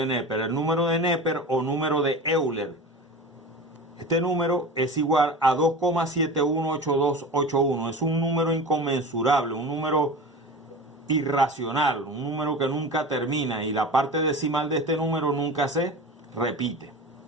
Neper. El número de Neper o número de Euler. Este número es igual a 2,718281. Es un número inconmensurable, un número irracional, un número que nunca termina y la parte decimal de este número nunca se repite.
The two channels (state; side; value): normal; both; correlation 0.32